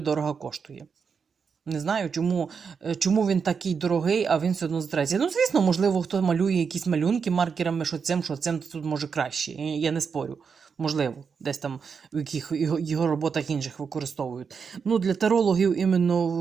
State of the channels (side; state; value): left; quieter; 6.0 dB